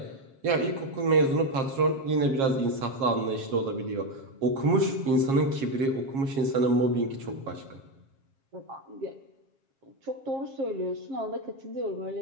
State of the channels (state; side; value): late; left; 7.4 ms